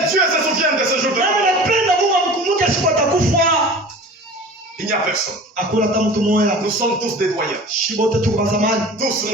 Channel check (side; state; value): both; normal; correlation 0.39